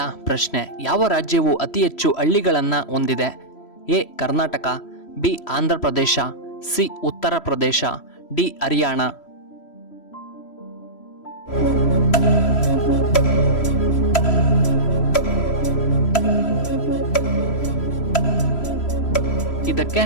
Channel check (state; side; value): late; right; 3.1 ms